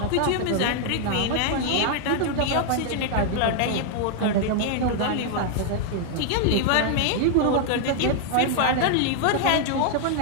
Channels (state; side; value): different; both; correlation 0.00